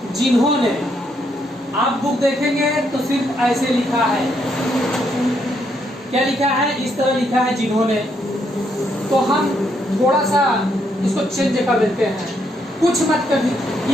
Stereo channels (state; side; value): normal; both; correlation 0.75